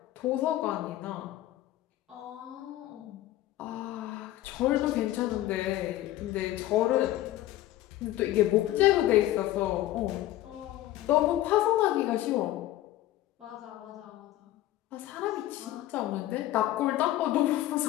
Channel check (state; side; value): quieter; right; 14.7 dB